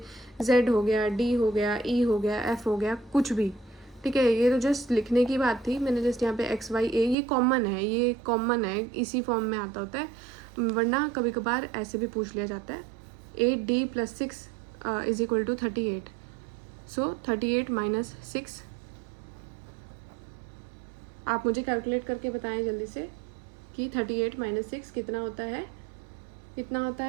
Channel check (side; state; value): left; drops out; at 7.2 s